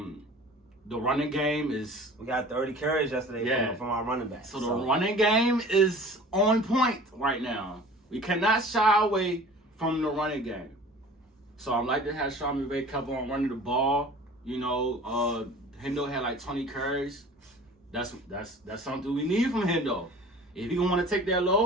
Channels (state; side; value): normal; both; correlation 0.44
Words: running game is. We got 30 carries yesterday from our running back. So the running game is on point right now. We cannot shy away from the running game. So I'm like to have Sean McVay kept on running the ball. You know, Hendo had like 20 carries. That's something we need from Hendo. If he gonna want to take that